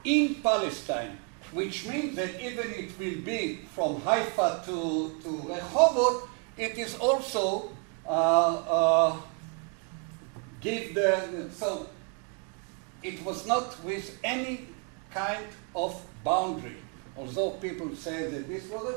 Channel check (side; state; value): left; quieter; 36.8 dB